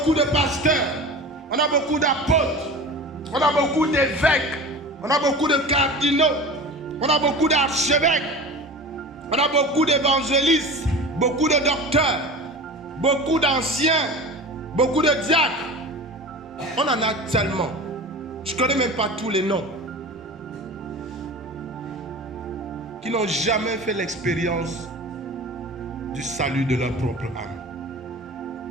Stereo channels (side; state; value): both; normal; correlation 0.34